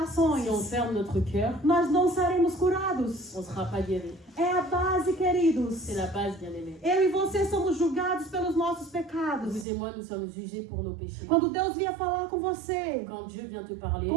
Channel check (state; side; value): drops out; left; at 9.7 s